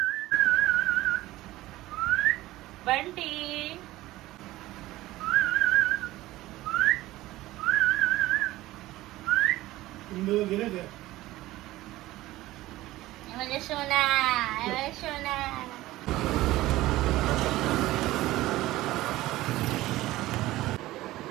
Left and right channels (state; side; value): quieter; left; 17.1 dB